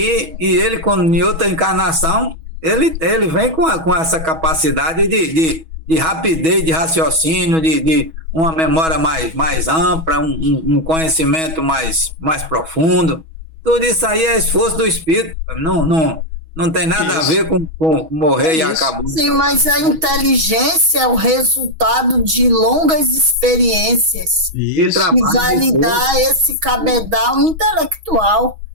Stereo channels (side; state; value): left; late; 6.2 ms